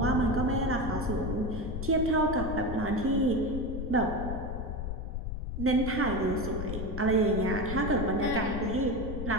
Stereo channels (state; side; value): noise; left; rumble, 5 dB below the sound